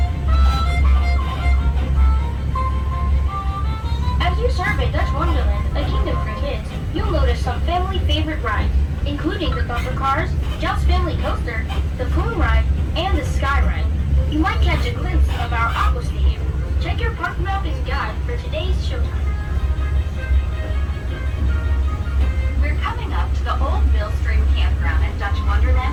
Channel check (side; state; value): both; identical; correlation 1.00